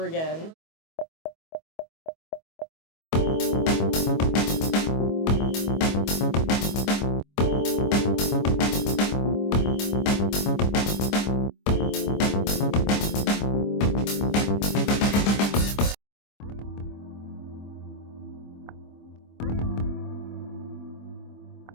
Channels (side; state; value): right; late; 25 ms